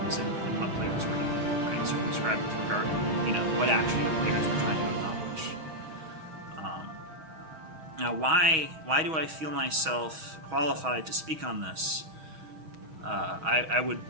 in what players were doing, right? Circumscribed with regard to, what actually the players were trying to accomplish. Now, why do I feel myself qualified to speak on this? I would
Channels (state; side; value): late; left; 6.3 ms